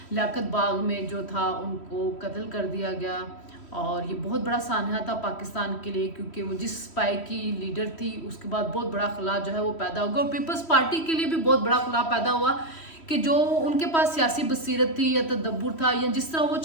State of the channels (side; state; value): right; late; 3.1 ms